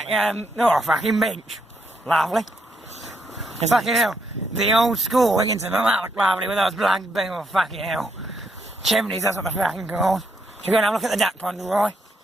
oh, fucking bench. Lovely. Fucking hell. The old school Wigginton, that looked lovely with those black beam of fucking hell. Chimneys, that's what they're fucking called. Should we go and have a look at the duck pond, Roy?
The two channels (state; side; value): normal; both; correlation 0.76